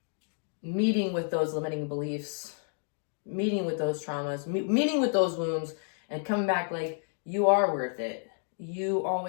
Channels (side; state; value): right; silent; 58 dB below the other